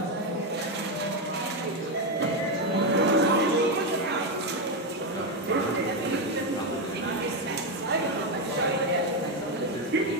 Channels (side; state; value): both; normal; correlation 0.07